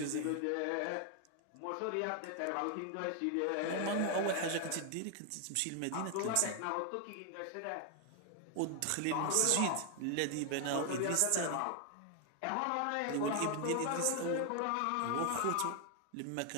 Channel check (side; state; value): both; different; correlation 0.00